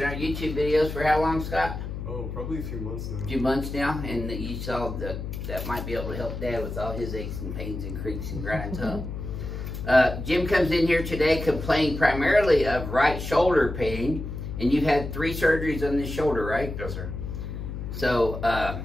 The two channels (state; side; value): noise; left; hum, 6 dB below the sound